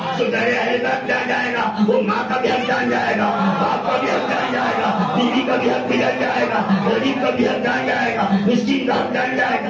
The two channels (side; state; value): both; identical; correlation 1.00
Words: تو در اہل بیت جان جائے گا. وہ ماں کا بھی حق جان جائے گا، باپ کا بھی حق جان جائے گا، بیوی کا بھی حق بھی جان جائے گا، غریب کا بھی حق جان جائے گا، مسکین کا حق جان جائے گا.